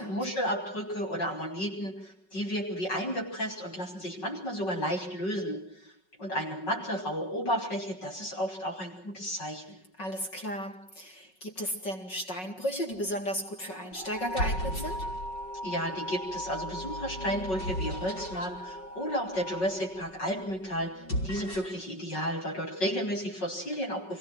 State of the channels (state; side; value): late; right; 5.4 ms